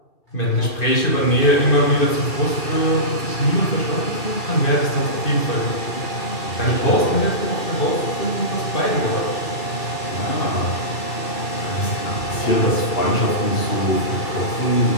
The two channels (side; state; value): right; late; 2.5 ms